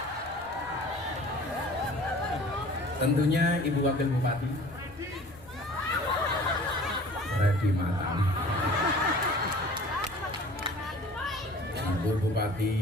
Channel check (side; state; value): left; noise; rumble, 26 dB below the sound